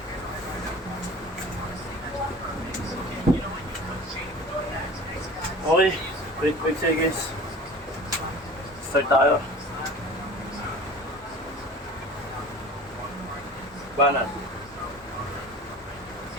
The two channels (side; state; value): both; normal; correlation 0.40